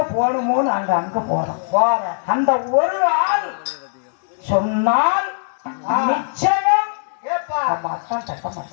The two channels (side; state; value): right; silent; digital silence